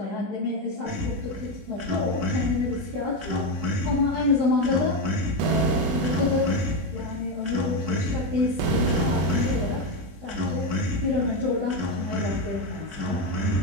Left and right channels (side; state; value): left; late; 21 ms